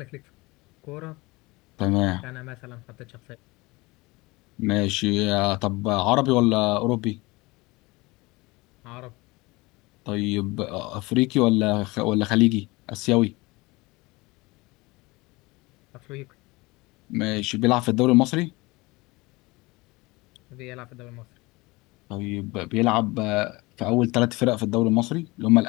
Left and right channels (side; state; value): right; quieter; 23.0 dB